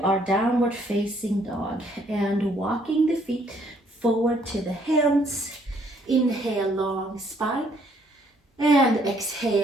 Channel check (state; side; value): normal; both; correlation 0.66